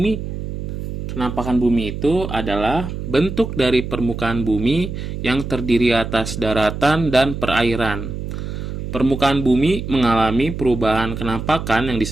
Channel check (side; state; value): right; noise; hum, 6 dB below the sound